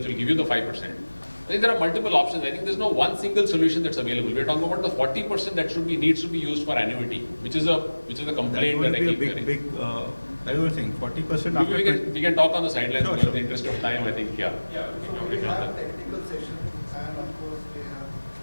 will give you the 5%. I think there are multiple options. I think there's no one single solution that's available. We're talking about the 40% that needs to be used for annuity, which is a complaint that I keep hearing. I was saying 40%. We can talk on the sidelines, Sure, because sure. in the interest of time, I think, yeah. Yeah, so we have technical sessions and of course we have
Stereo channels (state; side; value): inverted; both; correlation -1.00